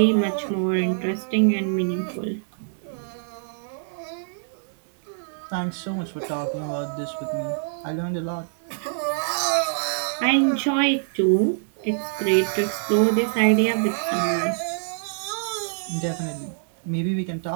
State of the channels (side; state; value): left; silent; digital silence